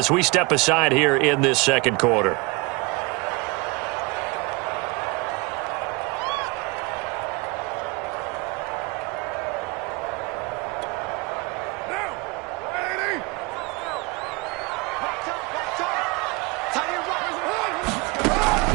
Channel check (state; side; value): quieter; left; 27.1 dB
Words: we step aside here in this second quarter.